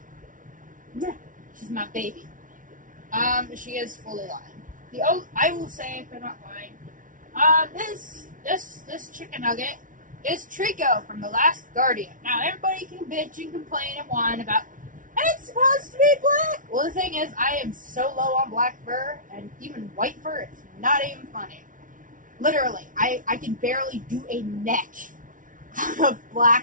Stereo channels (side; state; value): left; late; 0.38 ms